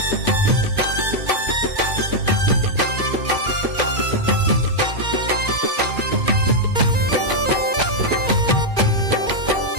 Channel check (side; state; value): left; late; 2.4 ms